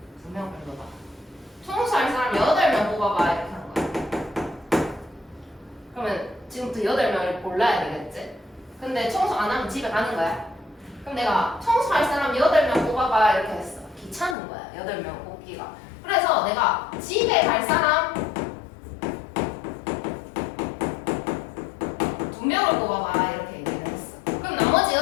2명 뽑아봐. 청소할 사람 8명 뽑아봐 이렇게 하는 거야. 그러면 지금부터 8명을 골라야 되겠지? 근데 청소 안 하면 집에 가는 거야. 그럼 내가 청소할 사람 8명 뽑아봐 이렇게 했어. 귀찮은 거야 8명 뽑기가. 그래서 내가 집에 갈 사람 2명을 뽑아봐 이렇게 얘기를 했어. 그럼 나머지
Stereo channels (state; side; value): drops out; right; at 14.4 s